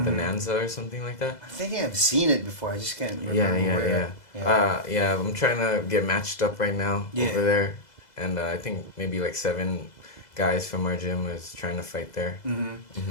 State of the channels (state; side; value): late; right; 2.0 ms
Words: Bonanza or something like that. I think I've seen it before. I just can't remember Yeah. I'm trying to get matched up right now over there, and I think maybe like 7 guys from our gym is trying to fight there.